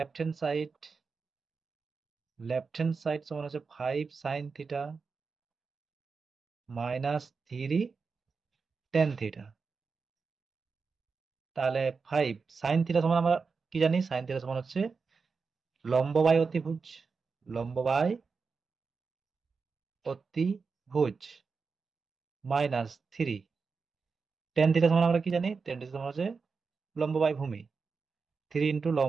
হ্যান্ড সাইড সমান হচ্ছে 5 sin theta minus 3 tan theta. তাহলে 5 sin থিটা সমান আমরা কি জানি, sin থিটা সমান হচ্ছে লম্ব বাই অতিভুজ, লম্ব বাই অতিভুজ মাইনাস 3 tan থিটা সমান আমরা কি জানি, tan থিটা সমান হচ্ছে লম্ব বাই ভূমি, 3 ইন্টু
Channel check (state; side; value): quieter; left; 4.9 dB